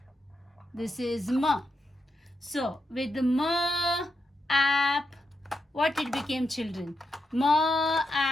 This is M. So with ma, app, what it became, children? Ma,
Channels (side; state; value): both; normal; correlation 0.85